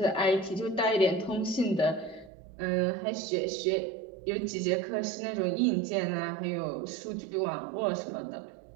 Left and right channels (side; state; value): left; drops out; at 2.3 s